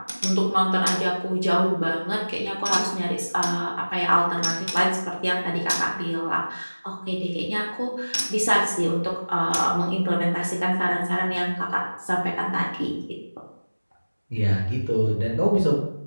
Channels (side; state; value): both; inverted; correlation -1.00